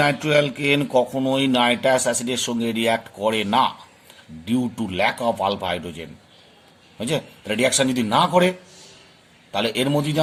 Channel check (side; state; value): both; identical; correlation 1.00